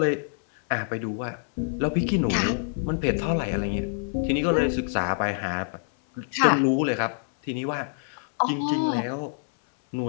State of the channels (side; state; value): right; silent; 57 dB below the other